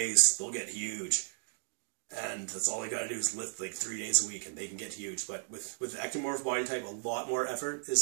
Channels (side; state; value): left; silent; digital silence